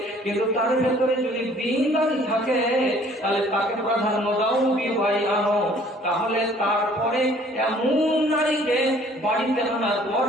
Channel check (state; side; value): normal; both; correlation 0.56